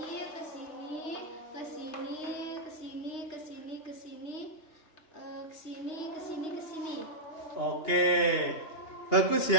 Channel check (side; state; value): right; late; 2.8 ms